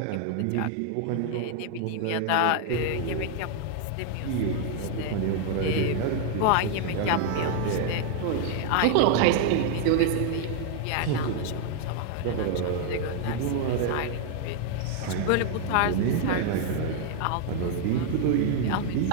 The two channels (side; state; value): both; different; correlation 0.00